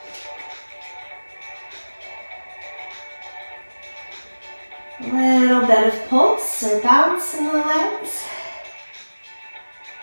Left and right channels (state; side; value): inverted; both; correlation -1.00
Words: A little bit of pulse or bounce in the legs.